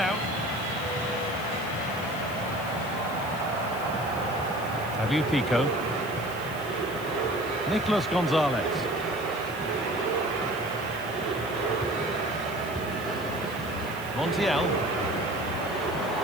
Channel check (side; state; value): left; noise; hiss, 16 dB below the sound